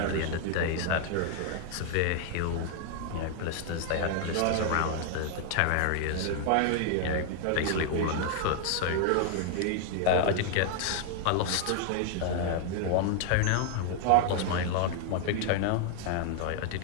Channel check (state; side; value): different; both; correlation 0.00